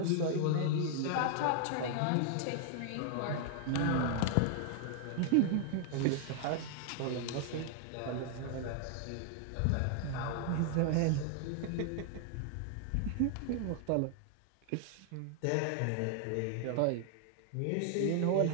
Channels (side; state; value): both; different; correlation 0.00